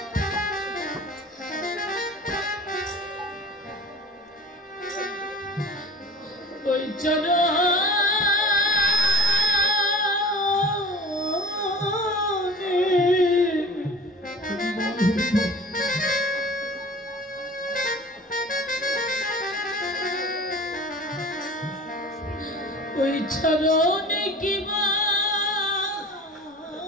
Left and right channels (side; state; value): both; normal; correlation 0.42